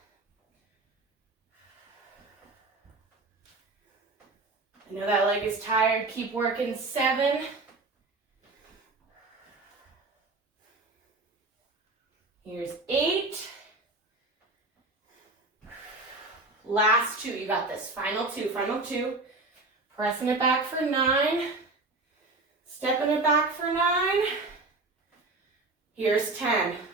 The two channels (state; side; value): quieter; left; 3.3 dB